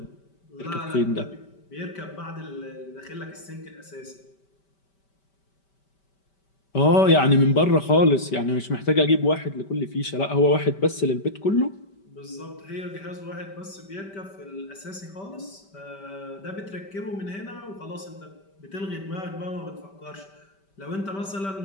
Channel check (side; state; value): right; late; 5.1 ms